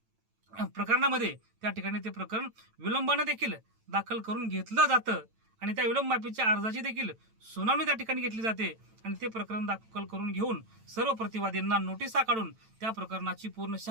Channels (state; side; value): late; left; 9.0 ms